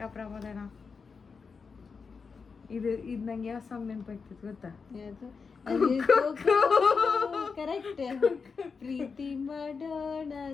ಪ್ರಮೋದನ. ಇದು ನಂಗೆ ಯಾವ ಸಾಂಗ್ ನೆನಪಾಗ್ತಿತ್ತು ಗೊತ್ತಾ? ಕರೆಕ್ಟ್. ಪ್ರೀತಿ ಮಾಡೋಣ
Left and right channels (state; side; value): quieter; right; 5.2 dB